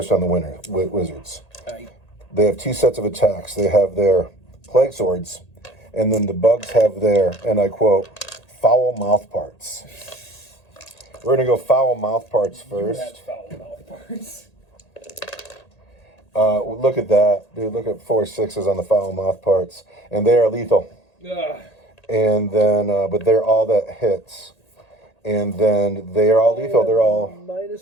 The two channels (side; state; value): right; late; 1.8 ms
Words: on the wizards. They have 2 sets of attacks. They have their plague swords, and then the bugs have their, and I quote, foul mouth parts. We're going to go foul mouth parts first. You have foul mouth parts. Look at that. Dude, look at 4 6s on the foul mouth parts. And they are lethal. Ugh. And then, but they're all that hits. And then they are all lethal. They're all...